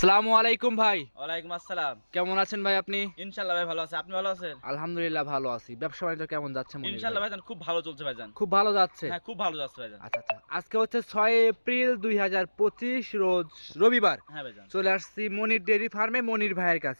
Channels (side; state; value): both; inverted; correlation -1.00